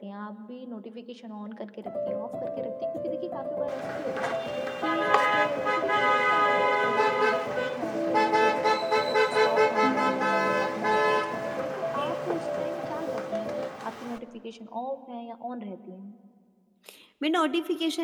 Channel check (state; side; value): identical; both; correlation 1.00